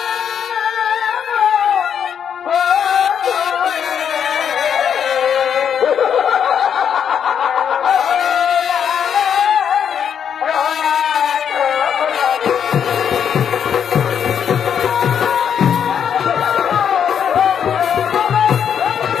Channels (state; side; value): quieter; right; 8.1 dB